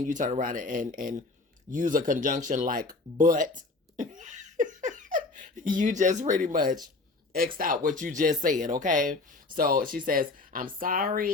you turn around and use a conjunction like but, you just pretty much X'd out what you just said, okay? So she says, I'm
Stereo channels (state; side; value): quieter; right; 3.5 dB